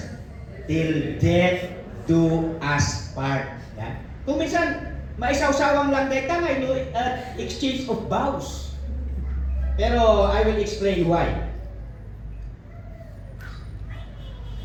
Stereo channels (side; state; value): both; identical; correlation 1.00